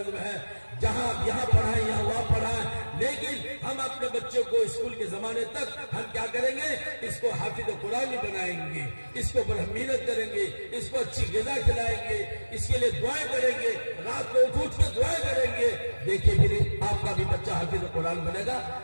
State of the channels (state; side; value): inverted; both; correlation -1.00